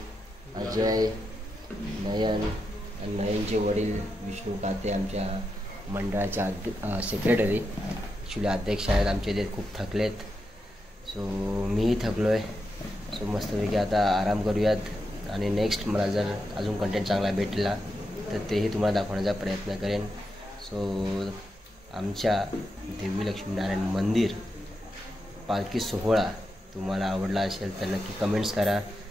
अजय, नयन आणि नयनचे वडील विष्णू काते आमच्या मंडळाच्या सेक्रेटरी, ॲक्च्युली अध्यक्ष आहेत आमचे. ते खूप थकलेत. सो मीही थकलो आहे. सो मस्तपैकी आता आराम करूयात आणि नेक्स्ट मला जर अजून कंटेंट चांगला भेटला तर तेही तुम्हाला दाखवण्याचा प्रयत्न करेन. सो आमच्या देवी लक्ष्मीनारायण मंदिर पालखी सोहळा तुम्हाला आवडला असेल तर नक्की कमेंट्स करा,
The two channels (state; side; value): normal; both; correlation 0.86